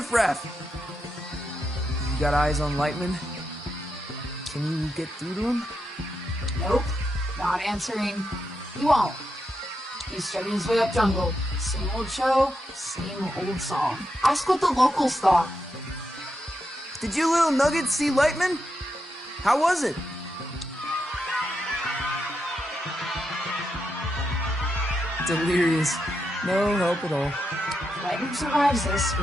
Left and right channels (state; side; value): normal; both; correlation 0.85